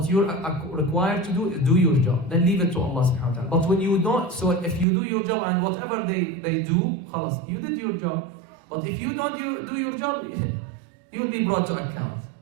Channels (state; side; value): drops out; left; at 4.9 s